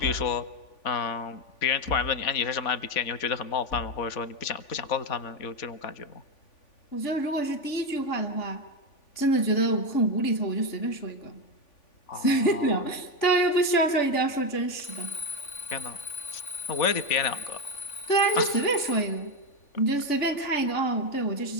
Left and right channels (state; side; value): late; right; 3.5 ms